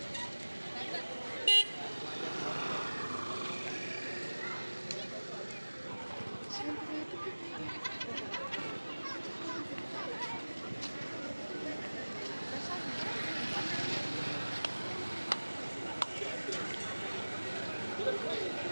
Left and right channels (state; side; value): inverted; both; correlation -1.00